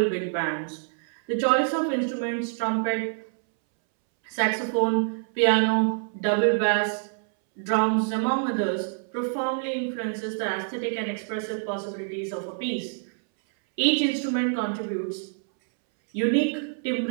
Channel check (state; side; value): silent; left; 61 dB below the other